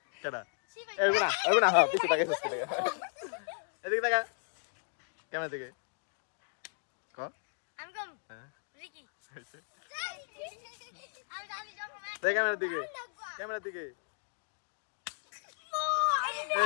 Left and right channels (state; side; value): silent; right; digital silence